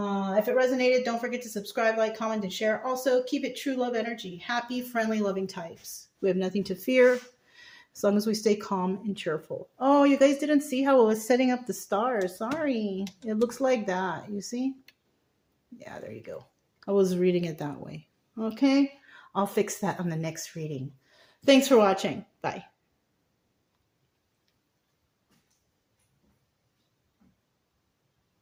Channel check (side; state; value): both; identical; correlation 1.00